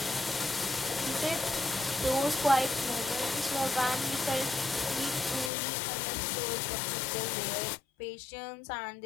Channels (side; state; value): right; drops out; at 5.5 s